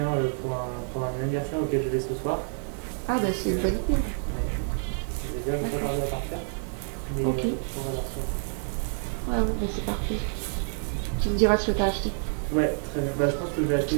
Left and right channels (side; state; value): left; silent; 55 dB below the other